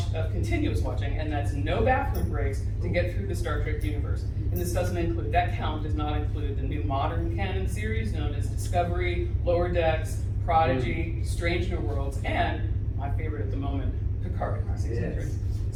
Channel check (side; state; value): both; identical; correlation 1.00